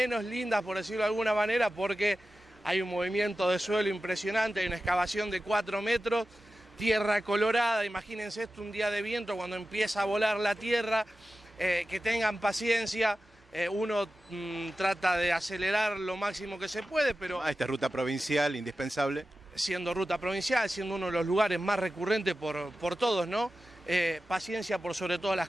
lindas, por decirlo de alguna manera, porque hay un movimiento de suelo impresionante, hay una excavación de 4 metros, tierra colorada. Imagínense esto un día de viento cuando empieza a volar la tierra, que tengan paciencia. Uno trata de acelerar lo máximo que se puede, pero... Esta ruta provincial, indispensable. Siendo ruta provincial, siendo uno de los lugares más recurrentes por todos, ¿no? Paciencia por sobre todas las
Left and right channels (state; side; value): normal; both; correlation 0.94